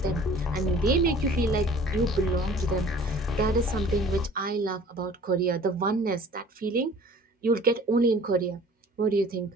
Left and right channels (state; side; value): normal; both; correlation 0.48